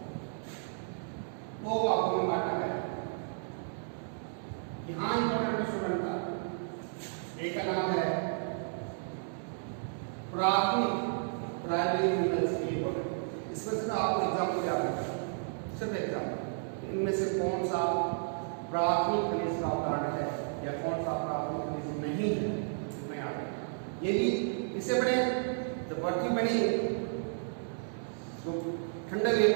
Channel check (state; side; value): silent; left; digital silence